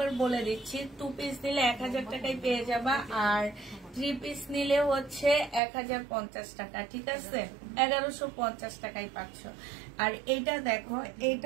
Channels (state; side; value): drops out; left; at 5.6 s